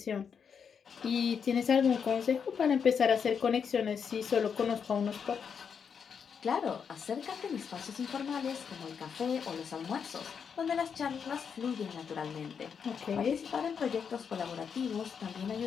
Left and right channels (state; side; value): quieter; right; 6.8 dB